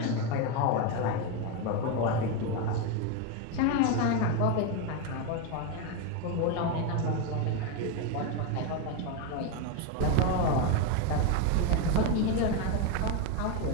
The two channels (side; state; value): both; different; correlation 0.03